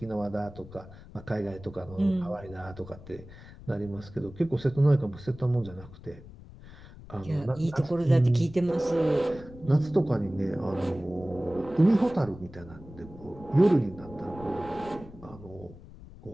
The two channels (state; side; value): noise; left; rumble, 18 dB below the sound